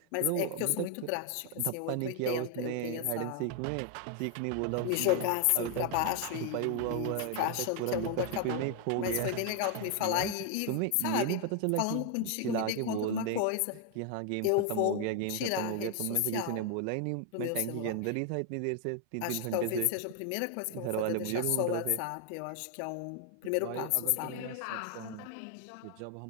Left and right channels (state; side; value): different; both; correlation 0.00